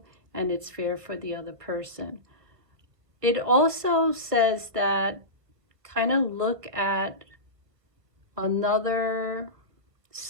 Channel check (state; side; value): late; left; 1.5 ms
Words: and it's fair for the other person. It also says that kind of look at another